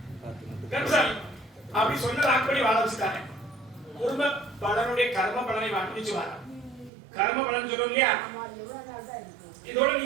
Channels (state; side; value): drops out; left; at 6.9 s